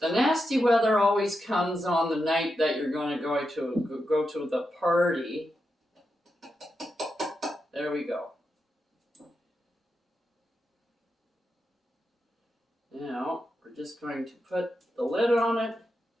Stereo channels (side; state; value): both; normal; correlation 0.87